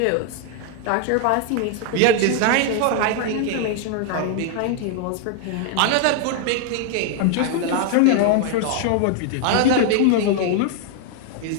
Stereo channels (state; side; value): different; both; correlation 0.00